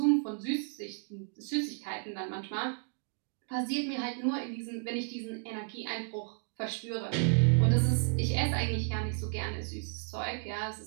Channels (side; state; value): left; silent; 56 dB below the other